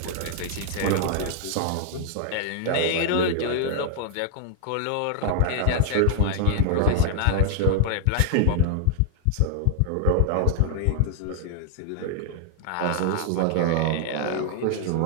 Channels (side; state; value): both; different; correlation -0.01